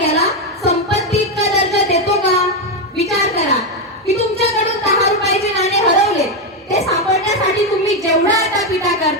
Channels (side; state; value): both; normal; correlation 0.07